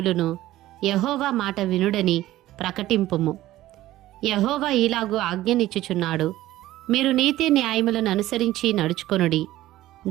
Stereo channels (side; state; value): left; quieter; 15.3 dB